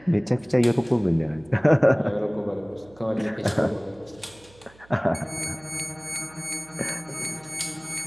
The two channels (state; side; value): noise; right; hum, 26 dB below the sound